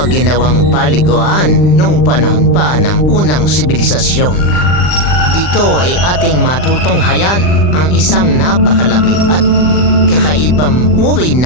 ginawang paliguan noong panahon pa ng unang sibilisasyon. Dito ay ating matutunghayan ang isang napakalaki at kakaibang uri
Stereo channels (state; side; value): late; right; 39 ms